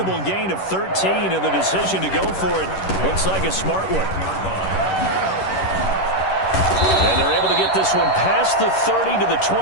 gain of 13, and the decision to go for it looks like a smart one. And they're able to get this one past the 30 to the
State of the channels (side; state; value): right; late; 11 ms